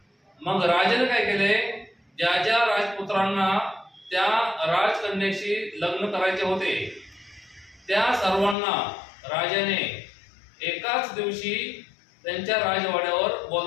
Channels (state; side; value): drops out; right; at 8.6 s